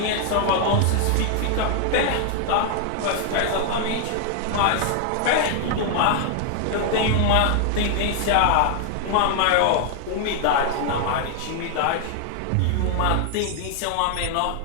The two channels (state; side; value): different; both; correlation 0.00